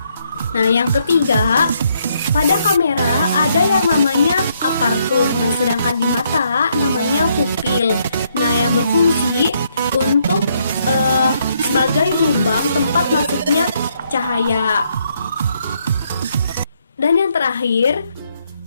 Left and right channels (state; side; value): inverted; both; correlation -0.73